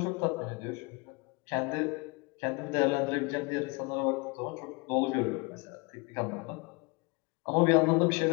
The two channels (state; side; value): quieter; right; 28.6 dB